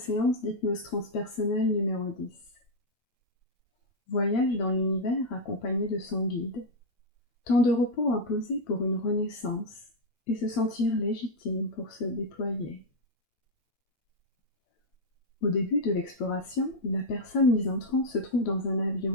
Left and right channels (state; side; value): late; right; 8.8 ms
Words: d'hypnose transpersonnelle numéro 10. Voyage dans l'univers accompagné de son guide. Temps de repos imposé pour une renaissance et se sentir légitime pour se déployer. Au début de l'exploration, la personne mise en transe se trouve dans un avion